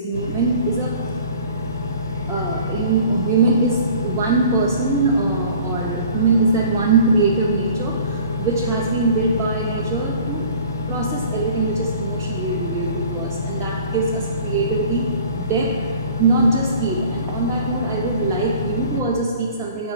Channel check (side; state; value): both; inverted; correlation -0.48